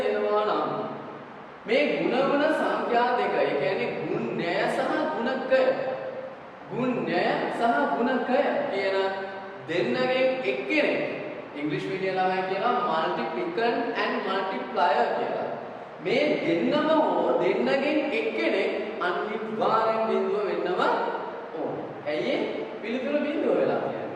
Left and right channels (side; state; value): both; identical; correlation 1.00